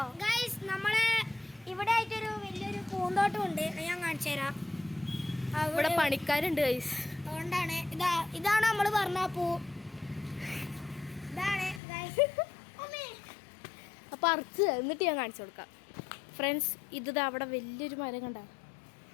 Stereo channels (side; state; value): right; drops out; at 11.8 s